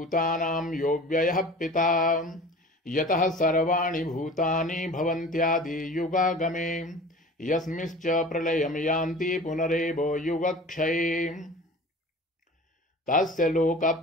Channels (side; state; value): both; normal; correlation 0.40